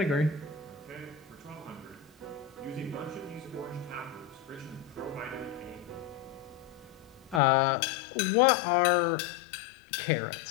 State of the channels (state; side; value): drops out; right; at 7.4 s